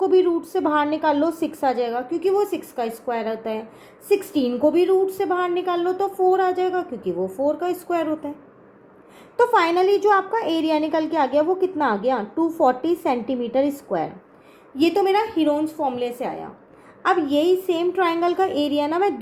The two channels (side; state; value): both; identical; correlation 1.00